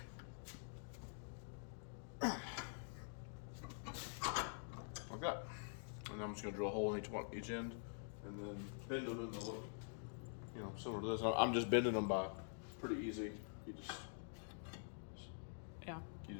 Okay. And I'm just going to drill a hole in each end and then bend them in the look, similar to this. I'm just bending them by pretty easy. Yeah. You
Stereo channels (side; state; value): right; silent; digital silence